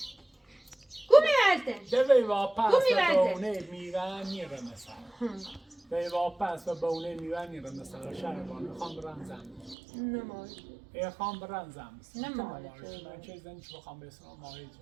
قومي مالتن دوی واپس بونه میوانی رو مثلا دوی واپس بونه میوانی رو مثلا شهربانو خان برنزم نماز خان برنزم نماز من چه زنی که بخوام بسنم ماهی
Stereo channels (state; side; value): drops out; left; at 9.8 s